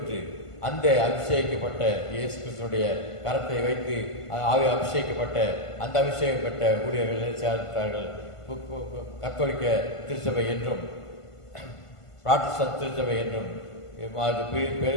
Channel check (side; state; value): right; late; 1.5 ms